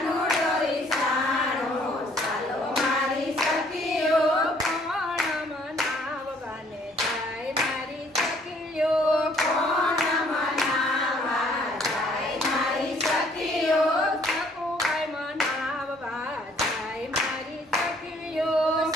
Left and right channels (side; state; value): both; normal; correlation 0.62